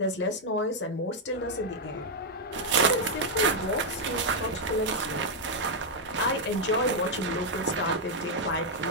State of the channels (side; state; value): both; normal; correlation -0.01